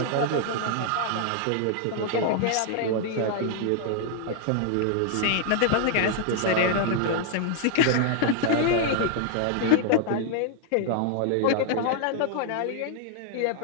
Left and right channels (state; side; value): different; both; correlation 0.00